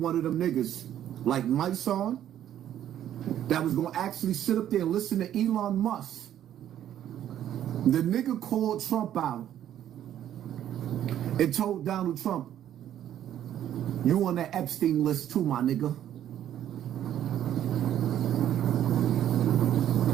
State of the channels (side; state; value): left; quieter; 11.1 dB